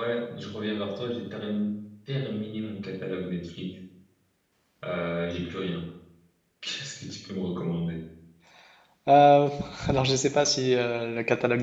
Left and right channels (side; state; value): both; identical; correlation 1.00